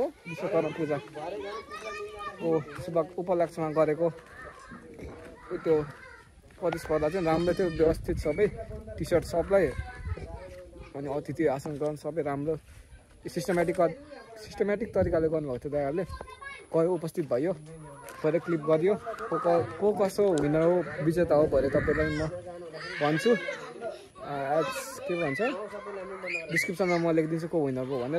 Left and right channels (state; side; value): identical; both; correlation 1.00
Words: पूजा ओ शुभ उपलक्ष्यमा गरेको त्यो प्रतिस्पर्धा चाहिँ राम्रो थियो व्यवस्थित सबै टी सर्ट सबलाई अनि अतिथि आसन ग्रहण सबै राम्रो सिस्टमेटिक तरिकाले गर्नुभएको थियो दाइहरूले गयो उपस्थित भयो भरे क्लिप गरियो को कसो विनर हो विजेता हो भरे तपाईँलाई म भन्छु के भन्छ डिस्क्रिप्सनमा म लेखिदिन्छु को विनर हो